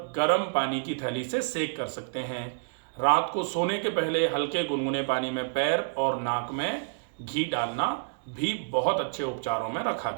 गर्म पानी की थैली से सेक कर सकते हैं। रात को सोने के पहले हल्के गुनगुने पानी में पैर और नाक में घी डालना भी बहुत अच्छे उपचारों में रखा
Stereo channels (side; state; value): left; silent; digital silence